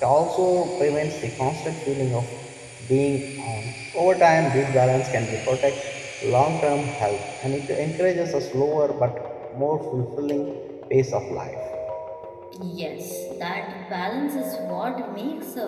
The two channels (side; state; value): both; identical; correlation 1.00